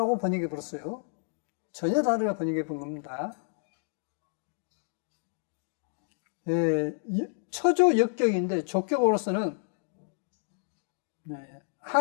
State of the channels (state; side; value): silent; right; digital silence